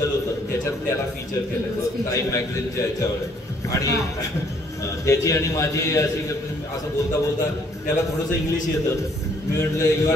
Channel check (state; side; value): normal; both; correlation 0.64